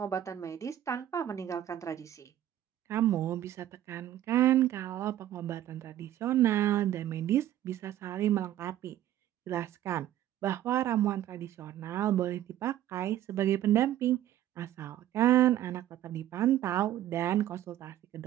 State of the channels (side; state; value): left; quieter; 12.4 dB